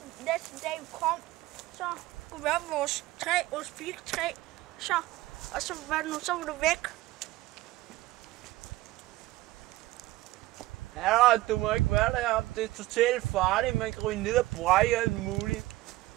dag vi kom, så kunne vi op vores træ, vores birketræ. Så var det væk. Ja, du må ikke være deroppe. Det er totalt farligt. Man kan ryge ned og brække alt muligt.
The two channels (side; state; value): left; quieter; 17.8 dB